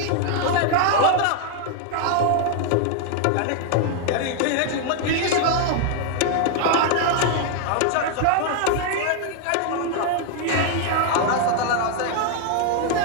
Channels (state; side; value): different; both; correlation 0.00